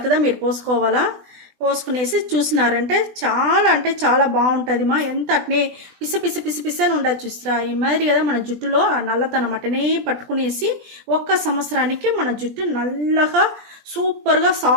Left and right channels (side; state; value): left; late; 20 ms